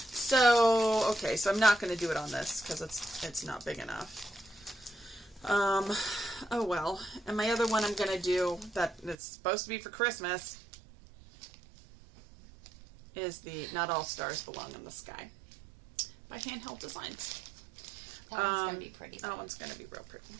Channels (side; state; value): left; drops out; at 9.2 s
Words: okay, so I'm not going to do it on this, because it's not big enough. Oh well. And my other one I'm going to do, that it's supposed to be for Christmas, is the Not All Stars Belong in the Sky by Handheld Designs. That one's going to be pretty. That one's going to be real pretty.